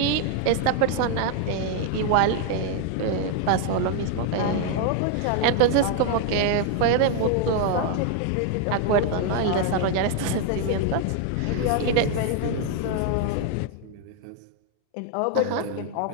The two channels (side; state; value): both; different; correlation 0.00